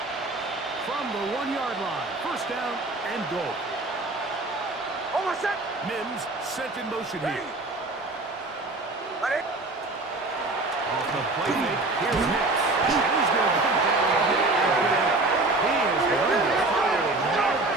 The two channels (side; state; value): left; quieter; 3.0 dB